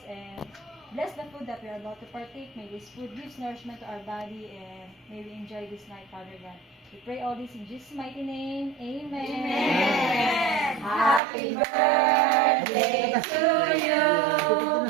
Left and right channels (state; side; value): drops out; left; at 11.2 s